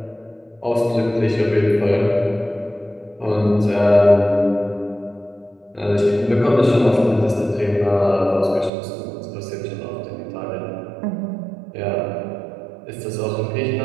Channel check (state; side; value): drops out; left; at 8.7 s